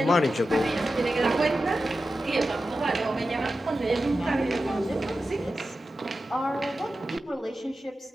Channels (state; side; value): normal; both; correlation 0.92